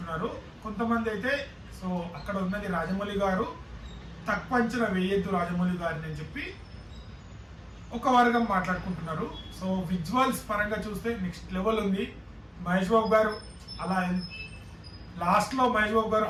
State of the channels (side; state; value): both; identical; correlation 1.00